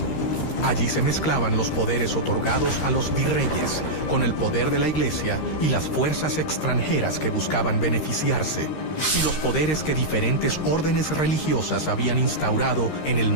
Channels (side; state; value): right; late; 13 ms